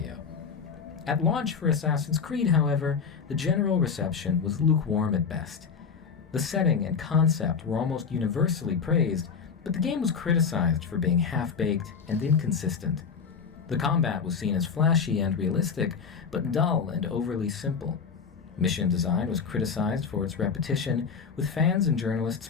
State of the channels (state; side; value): quieter; right; 6.0 dB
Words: At launch for Assassin's Creed, however, the general reception was lukewarm at best. The setting and concept were almost universally praised, but the game was criticized for being half-baked and inconsistent. The combat was seen as flashy and realistic, but dull and overly simple. Mission design was criticized for its repetition, with fans and journalists